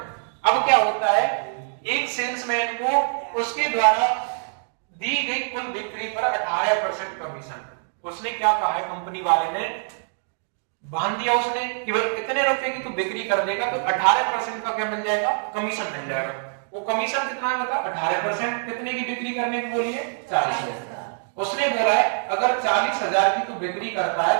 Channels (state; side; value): silent; left; digital silence